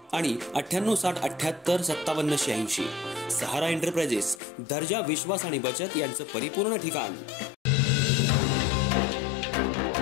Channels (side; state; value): right; drops out; at 4.4 s